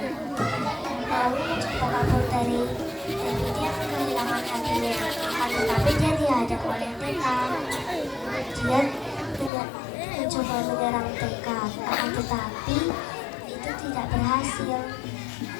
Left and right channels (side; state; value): right; drops out; at 9.5 s